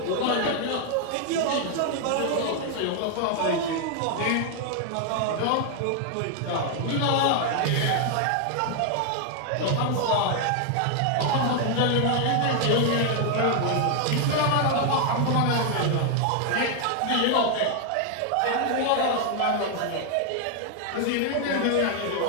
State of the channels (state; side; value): different; both; correlation 0.00